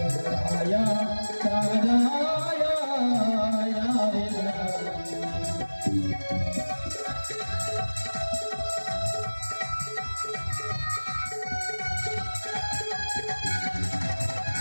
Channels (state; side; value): inverted; both; correlation -1.00